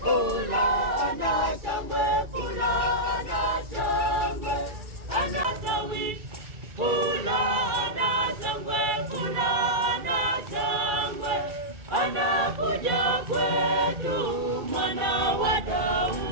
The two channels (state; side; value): late; left; 2.4 ms